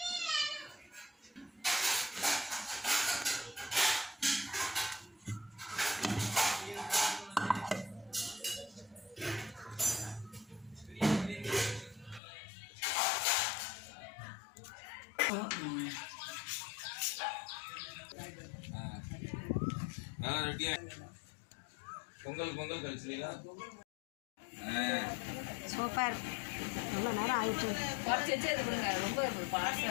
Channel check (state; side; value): drops out; right; at 12.2 s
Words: பொங்கல் பொங்கல் கழிச்சுங்களா? சூப்பர். எவ்வளோ நேரம் ஆயிடுச்சு.